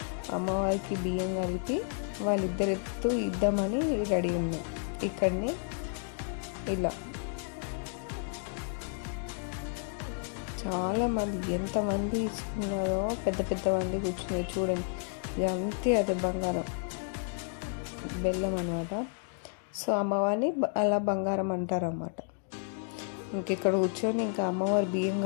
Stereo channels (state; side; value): silent; right; 57 dB below the other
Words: అమ్మవారికి బియ్యం కలిపి వాళ్ళిద్దరు ఇద్దామని రెడీ ఉన్నాం. ఇక్కడనే ఇలా చాలామంది ఎంతమంది ఇచ్చుకున్నారో, పెద్ద పెద్ద మంది కూర్చున్నారు చూడండి. ఇది అంతే, అదే బంగారం బెల్లం అనమాట. సో అమ్మవారిని అలా బంగారం అంటారు అన్నమాట. ఇక్కడ కూర్చొని ఇంకా అమ్మవారి బియ్యం